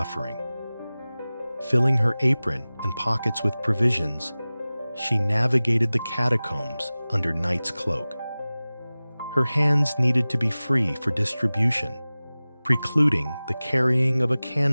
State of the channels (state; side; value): inverted; both; correlation -0.98